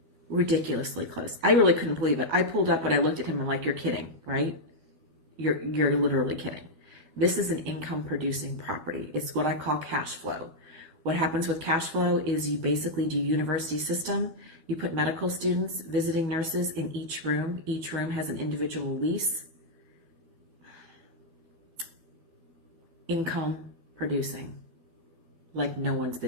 ridiculously close. I really couldn't believe it. I pulled up and I looked at him and like, you're kidding, right? You're literally kidding. This is an income producing property. It's what I call cash flow. What happens with cash flow is you basically do university system. You put medical students, visiting nurses in each room. Each room has an individual lease. Income producing, like no one's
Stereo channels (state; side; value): late; left; 12 ms